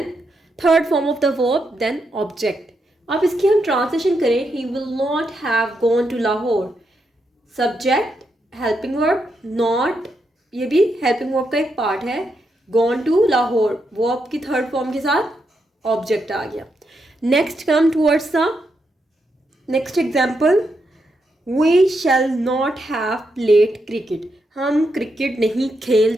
third form of the verb, then object. अब इसकी हम ट्रांसलेशन करें, he will not have gone to Lahore. Subject helping verb, not, ये भी हेल्पिंग वर्ब का एक पार्ट है, गॉन टू लाहौर, वर्ब की थर्ड फॉर्म के साथ ऑब्जेक्ट आ गया। Next come towards the next example, we shall not have played cricket. हम क्रिकेट नहीं खेल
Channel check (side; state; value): both; normal; correlation 0.82